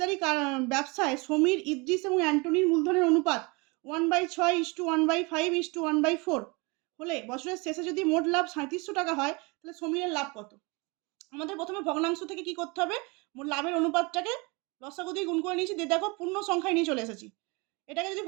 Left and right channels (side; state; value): left; quieter; 27.9 dB